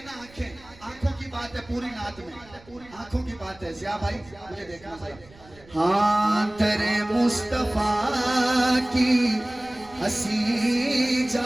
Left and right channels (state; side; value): noise; right; rumble, 24 dB below the sound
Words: ना आंखें आंखों की बात है पूरी नात में, पूरी आंखों की बात है। ज़िया भाई मुझे देखना भाई। हाँ तेरे मुस्तफा की हंसी